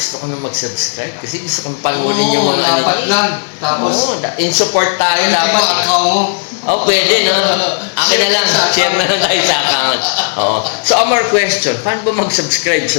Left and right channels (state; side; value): silent; right; digital silence